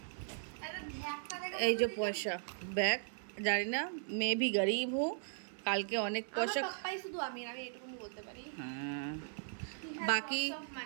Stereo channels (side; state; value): left; silent; 52 dB below the other